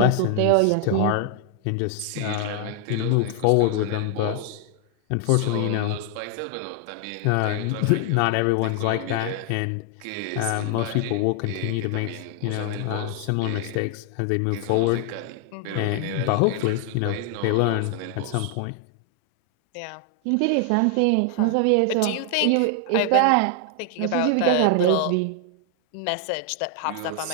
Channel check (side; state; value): both; different; correlation 0.00